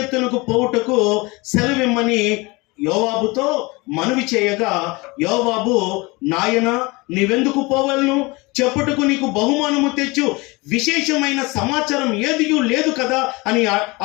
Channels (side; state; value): right; quieter; 24.7 dB